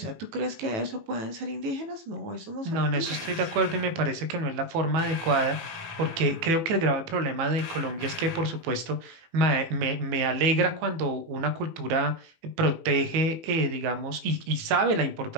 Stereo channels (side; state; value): left; late; 18 ms